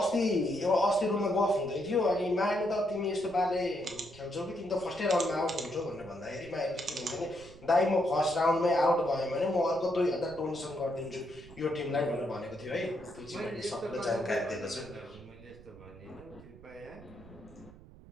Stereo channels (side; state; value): right; noise; rumble, 20 dB below the sound